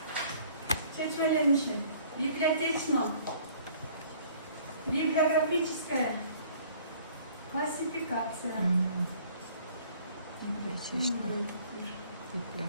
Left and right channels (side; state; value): both; inverted; correlation -0.55